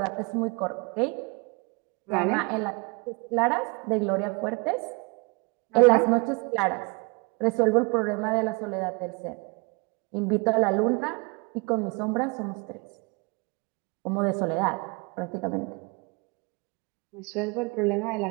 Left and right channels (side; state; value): left; quieter; 30.6 dB